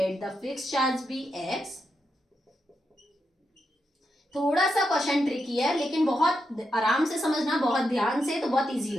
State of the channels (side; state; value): both; normal; correlation 0.85